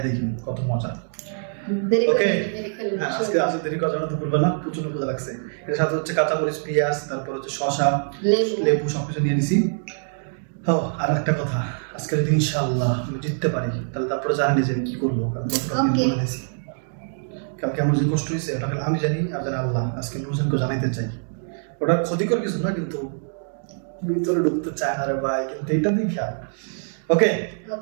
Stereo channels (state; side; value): silent; left; digital silence